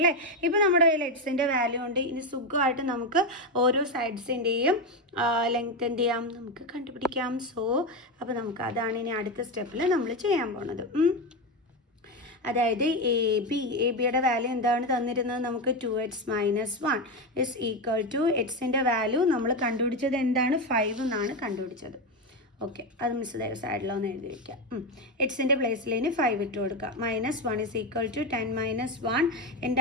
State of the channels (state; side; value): normal; both; correlation 0.12